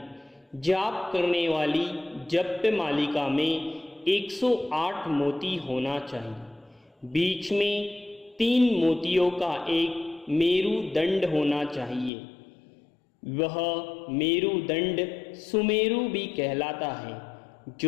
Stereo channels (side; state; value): right; drops out; at 12.1 s